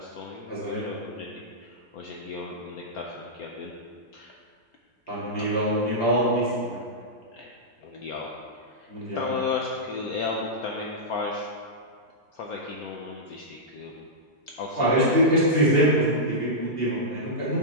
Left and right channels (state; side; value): normal; both; correlation -0.10